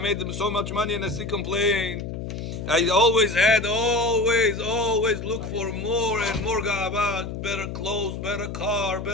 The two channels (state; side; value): noise; left; hum, 7 dB below the sound